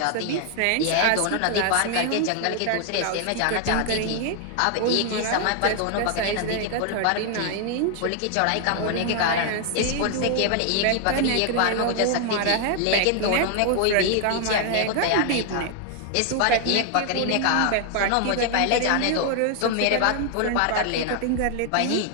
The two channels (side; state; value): both; different; correlation 0.00